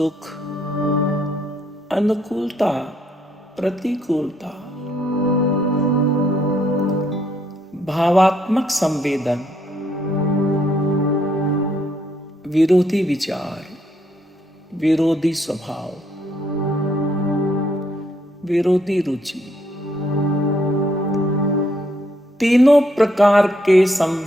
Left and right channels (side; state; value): both; normal; correlation 0.72